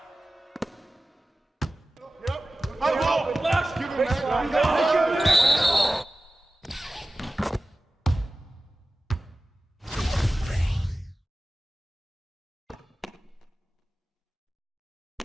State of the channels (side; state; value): both; normal; correlation 0.96